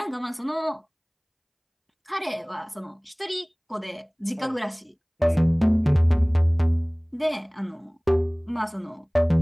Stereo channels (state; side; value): identical; both; correlation 1.00